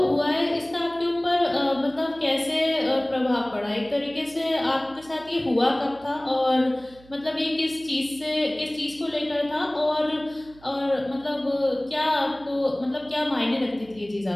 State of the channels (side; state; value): right; noise; hum, 24 dB below the sound